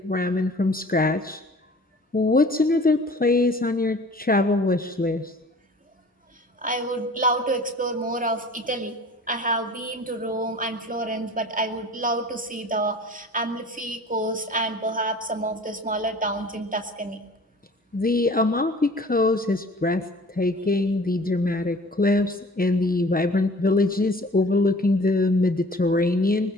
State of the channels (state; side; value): normal; both; correlation 0.46